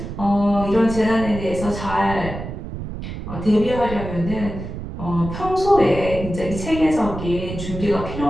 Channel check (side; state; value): right; noise; rumble, 8 dB below the sound